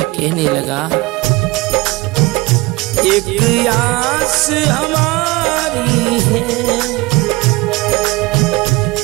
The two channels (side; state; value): left; quieter; 22.5 dB